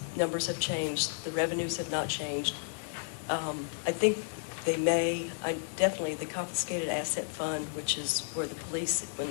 numbers have changed. The revenues have not changed. I think they may, definitely the confiscated asset fund, which is where the police, when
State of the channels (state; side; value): silent; right; digital silence